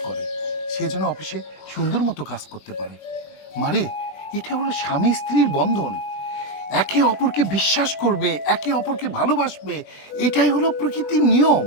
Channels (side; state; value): right; late; 21 ms